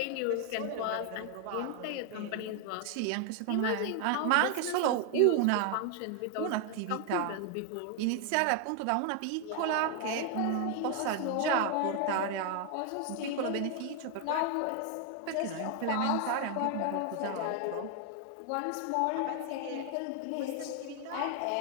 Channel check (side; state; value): both; different; correlation 0.00